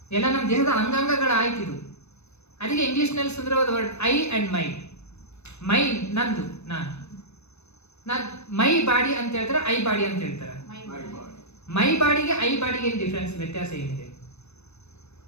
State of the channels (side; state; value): right; late; 0.81 ms